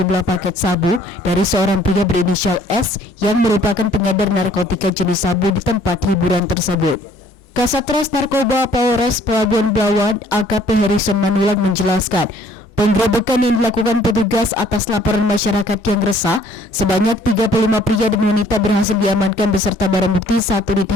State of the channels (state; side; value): normal; both; correlation 0.58